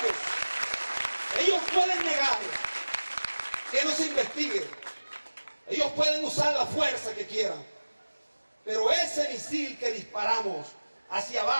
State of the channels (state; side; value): inverted; both; correlation -1.00